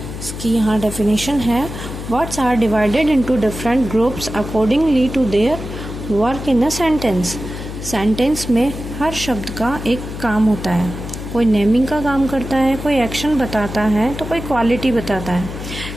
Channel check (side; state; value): left; noise; hum, 9 dB below the sound